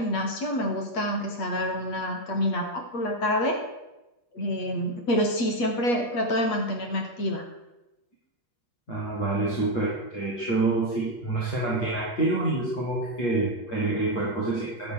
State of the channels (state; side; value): late; right; 8.4 ms